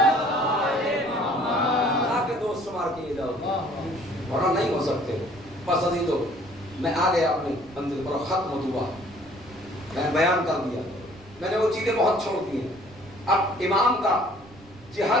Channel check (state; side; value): noise; right; rumble, 23 dB below the sound